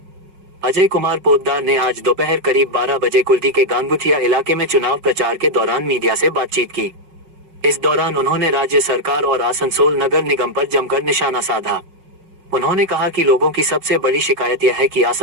अजय कुमार पोद्दार ने आज दोपहर करीब 12 बजे कुल्टी के गांगुठिया इलाके में चुनाव प्रचार के दौरान मीडिया से बातचीत की। इस दौरान उन्होंने राज्य सरकार और आसनसोल नगर निगम पर जमकर निशाना साधा। उन्होंने कहा कि लोगों की सबसे बड़ी शिकायत यह है कि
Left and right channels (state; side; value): late; left; 5.4 ms